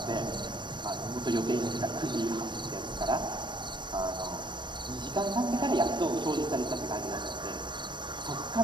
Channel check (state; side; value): late; left; 0.22 ms